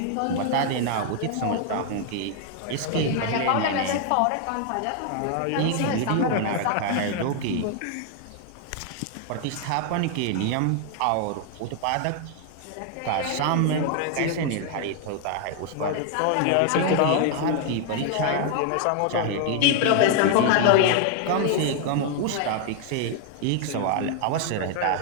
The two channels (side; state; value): both; different; correlation 0.00